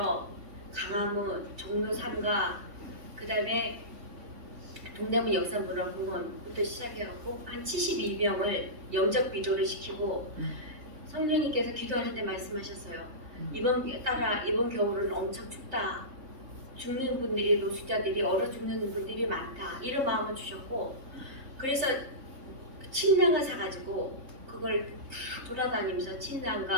강화문, 종로 3가 그다음에 동대문 역사문화공원부터 시작해갖고 한 72명을 영접 기도를 시키고 성령님께서 기도하는데 말씀하셨어요. 이번 겨울은 엄청 춥다. 죽는 분들이 노숙자들이 얼어 죽는 분들이 많다. 이런 마음을 주셨고 그래서 침낭을 사가지고 그걸 다 돌아다니면서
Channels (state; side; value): late; left; 3.6 ms